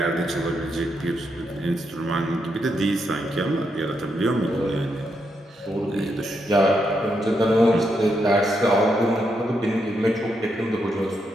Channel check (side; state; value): both; normal; correlation 0.81